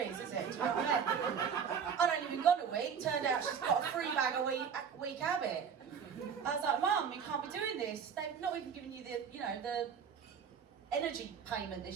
is it? Do you know what I mean? I'd only been gone a week, turned out she's got a 3 bag a week habit. I was like, Mum, you can't be doing this. They've not even given you the, you know, the energy payment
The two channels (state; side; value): quieter; left; 7.0 dB